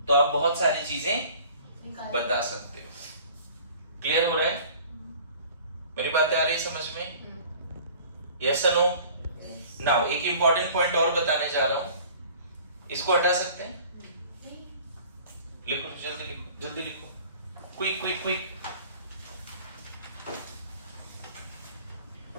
तो आप बहुत सारी चीजें बता सकते हो। क्लियर हो रहा है? मेरी बातें आ रही समझ में? यस और नो? नाउ एक इंपॉर्टेंट पॉइंट और बताने जा रहा हूं। इसको हटा सकते हैं? लिखो, जल्दी लिखो, जल्दी लिखो, quick quick quick.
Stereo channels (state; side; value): inverted; both; correlation -0.48